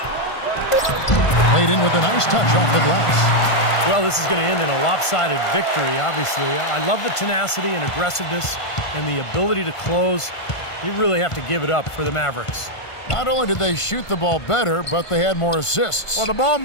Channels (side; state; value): right; late; 1.5 ms